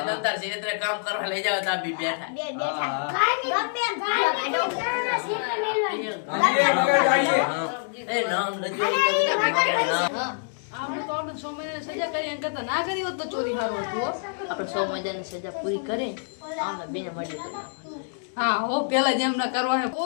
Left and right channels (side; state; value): right; silent; digital silence